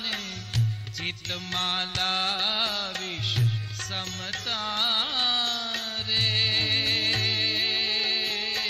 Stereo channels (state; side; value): identical; both; correlation 1.00